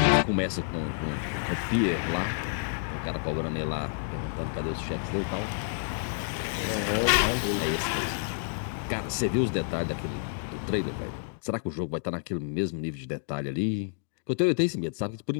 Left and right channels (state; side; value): silent; right; digital silence